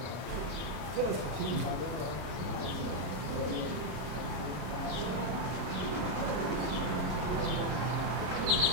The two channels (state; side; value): late; left; 33 ms